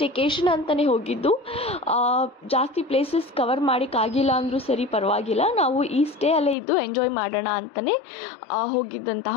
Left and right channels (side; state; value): right; drops out; at 6.6 s